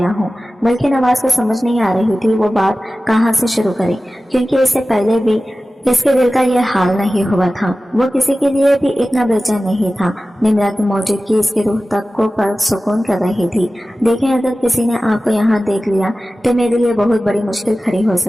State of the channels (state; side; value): normal; both; correlation 0.95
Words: हूँ। मुल्क नवाज को समझ नहीं आ रही थी वो बात कहाँ से शुरू करे, क्योंकि इससे पहले भी इसके दिल का यह हाल नहीं हुआ था। वो किसी के लिए भी इतना बेचैन नहीं था। निम्रा की मौजूदगी इसके रूह तक को पर सुकून कर रही थी। देखें, अगर किसी ने आपको यहाँ देख लिया तो मेरे लिए बहुत बड़ी मुश्किल खड़ी हो